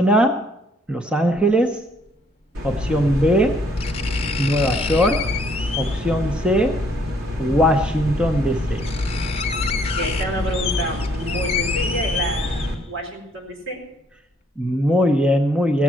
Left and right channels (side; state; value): both; normal; correlation 0.66